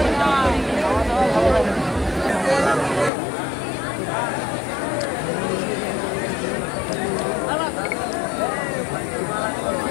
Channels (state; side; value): drops out; right; at 3.1 s